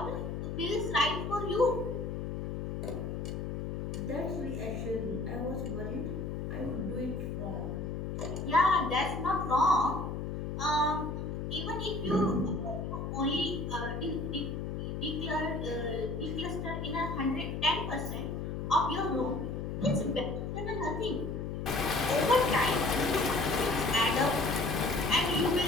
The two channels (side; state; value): left; noise; hum, 4 dB below the sound